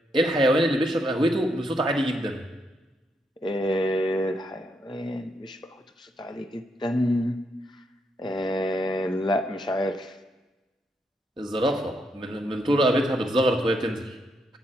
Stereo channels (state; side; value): normal; both; correlation 0.78